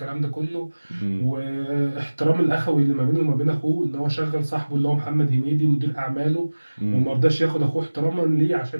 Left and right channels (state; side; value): inverted; both; correlation -1.00